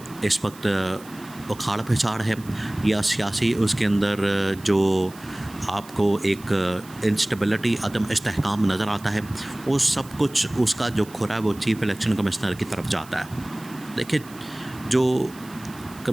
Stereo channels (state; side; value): noise; right; hiss, 21 dB below the sound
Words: इस वक्त उखाड़ पिछाड़ है या सियासी उसके अंदर जो आपको एक इंस्टेबिलिटी, अदम इस्तेहकाम नज़र आता है, वो सब कुछ उसका जो खुरा है वो चीफ़ इलेक्शन कमिश्नर की तरफ जाता है। देखिए, जो